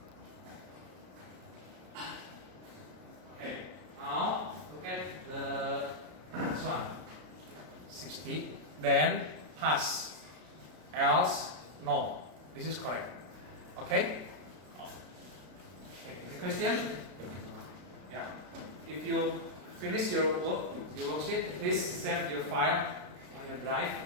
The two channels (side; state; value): left; late; 33 ms